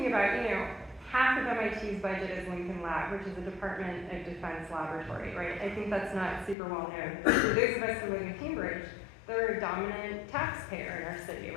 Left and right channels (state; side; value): drops out; right; at 6.6 s